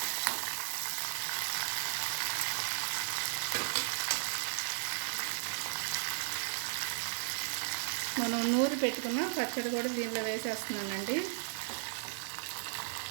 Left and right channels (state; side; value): silent; left; digital silence